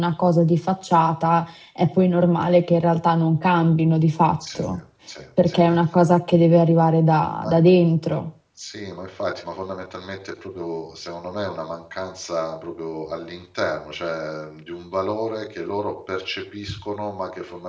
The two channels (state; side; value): identical; both; correlation 1.00